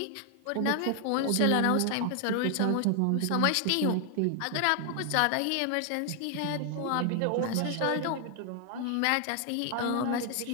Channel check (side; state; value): both; different; correlation 0.00